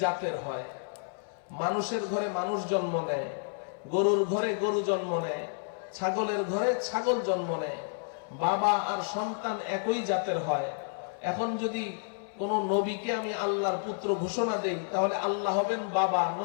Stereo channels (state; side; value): silent; right; digital silence